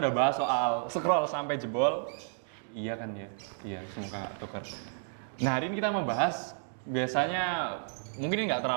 udah bahas soal scroll sampai jebol. Iya kan ya? Iya, semoga nggak tukar. Nah, hari ini kita mau bahas, biasanya mungkin ini nggak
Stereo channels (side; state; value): left; silent; digital silence